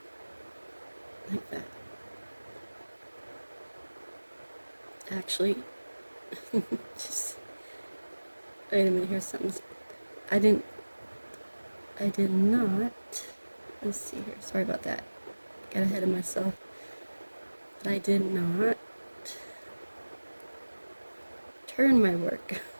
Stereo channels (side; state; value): both; inverted; correlation -1.00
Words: Like that. Actually, just wait a minute, here's something. I did not, let's see here, sorry about that, got ahead of myself, but I did not turn my work.